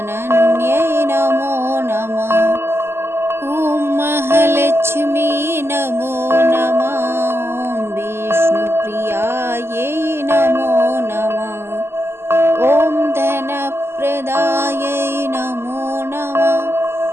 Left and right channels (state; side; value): late; left; 0.12 ms